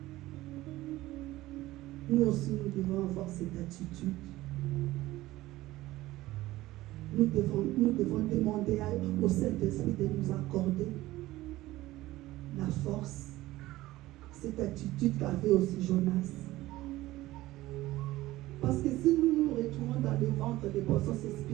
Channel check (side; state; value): left; quieter; 17.1 dB